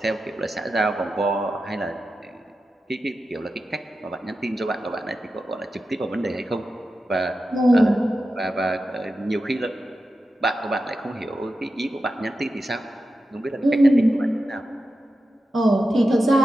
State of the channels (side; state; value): both; normal; correlation 0.91